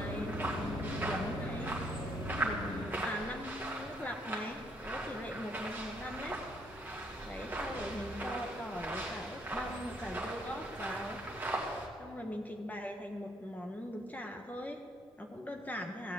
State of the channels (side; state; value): both; normal; correlation 0.69